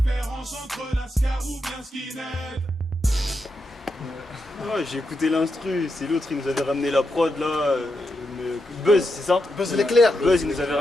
entre lascar ou bien skinhead. Ouais, j'ai écouté l'instru, c'est l'autre, il nous avait ramené la prod là. Buzz, c'est ça? Buzz l'éclair. Buzz, il nous avait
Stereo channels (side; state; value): both; normal; correlation 0.85